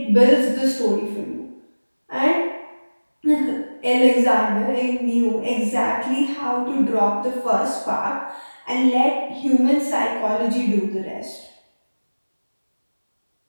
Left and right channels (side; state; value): both; inverted; correlation -1.00